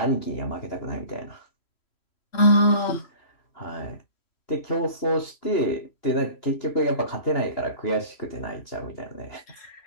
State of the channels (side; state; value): right; late; 2.9 ms